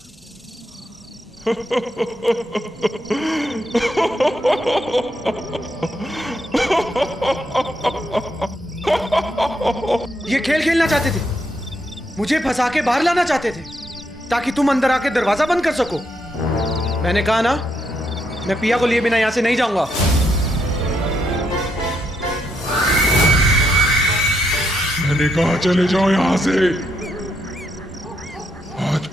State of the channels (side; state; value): both; normal; correlation 0.78